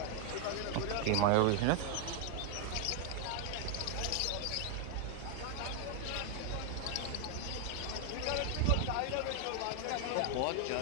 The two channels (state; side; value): different; both; correlation 0.00